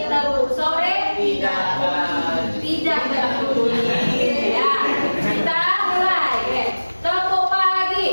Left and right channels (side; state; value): both; inverted; correlation -1.00